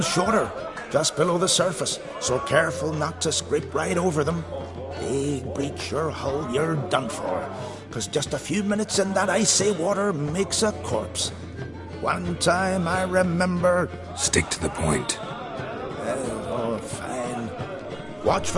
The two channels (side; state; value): right; noise; hum, 29 dB below the sound